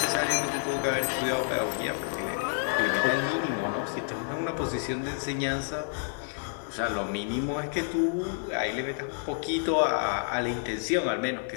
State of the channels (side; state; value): right; silent; 56 dB below the other